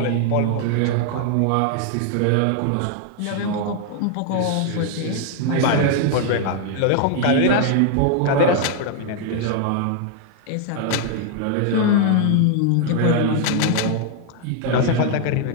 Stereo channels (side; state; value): both; different; correlation 0.00